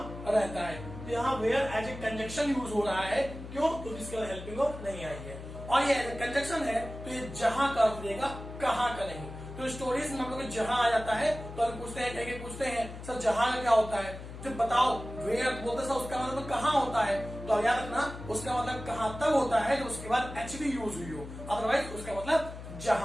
रहता है। तो यहाँ where as a conjunction use हो रहा है, क्यों, क्योंकि इसके बाद हेल्पिंग वर्ब नहीं आई है, और ये कंजंक्शन है तो ये जहां का अर्थ देगा, कहाँ का नहीं। तो स्टोरीज में हम लोग जहां आ जाता है तो हम पूछते हैं, कहीं पूछते हैं सर जहां का क्या होता है, जब बताओ वेयर बोलते सर उसका मतलब कहाँ होता है, तो याद रखना उसका मतलब कहाँ तब होता है जब उसके बाद एचवी यूज हुई हो, अदरवाइज उसका मतलब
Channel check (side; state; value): left; noise; hum, 11 dB below the sound